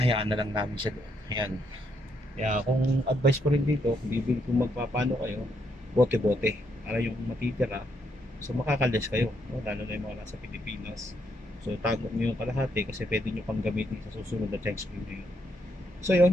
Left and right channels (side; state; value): both; normal; correlation 0.75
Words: na lang namin siya doon. Ayan. Kaya kung advice ko rin dito, kung magpapano kayo, bote-bote. Para yung matitira, so makakalis kayo. No? Lalo na yung mga nasa Pilipinas. So tago nyo yung kalahati kasi pwede nyo pang gamitin sa susunod na check screen nyo. So